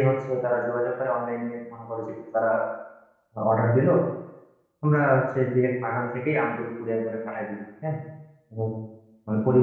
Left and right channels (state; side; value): identical; both; correlation 1.00